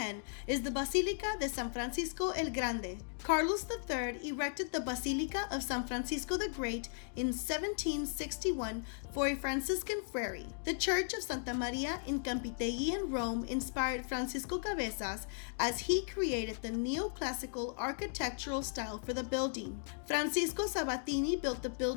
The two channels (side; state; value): right; silent; digital silence